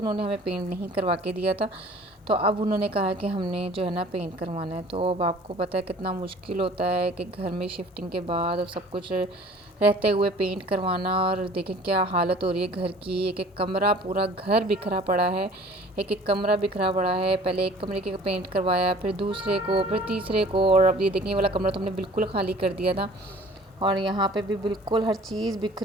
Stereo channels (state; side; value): normal; both; correlation 0.49